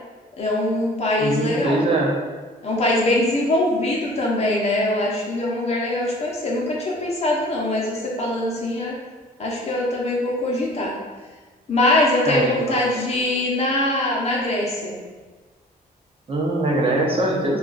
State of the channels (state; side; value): normal; both; correlation 0.46